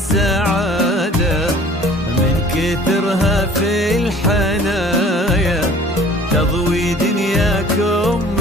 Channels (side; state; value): both; normal; correlation 0.50